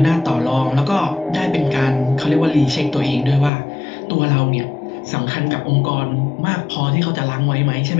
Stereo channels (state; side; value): drops out; right; at 3.5 s